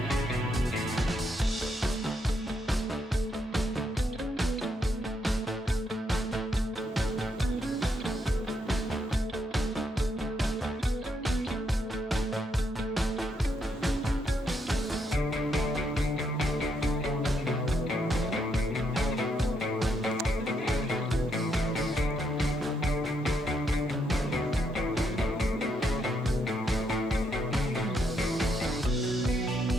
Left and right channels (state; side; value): normal; both; correlation 0.77